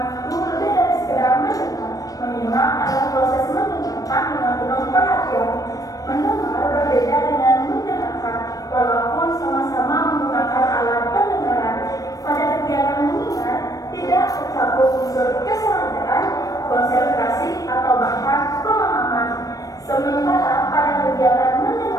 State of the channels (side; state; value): right; late; 0.17 ms